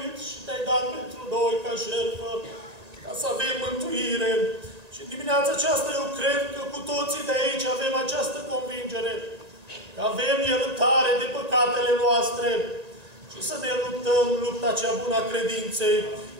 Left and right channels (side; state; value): left; late; 1.8 ms